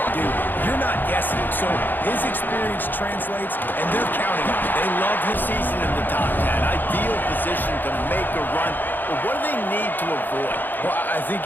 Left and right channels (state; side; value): late; right; 0.090 ms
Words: Dude, you're not guessing. So his experience translates, and they're counting on it. They love his season in the top 10. Ideal position to make a run. But what do they need to avoid? Well, I think